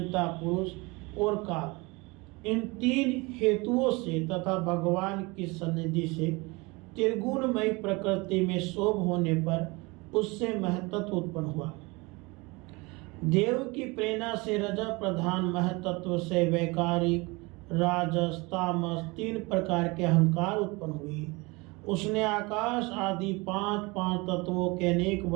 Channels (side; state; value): left; quieter; 25.3 dB